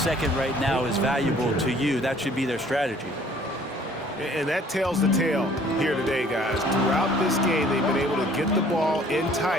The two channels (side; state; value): both; normal; correlation 0.56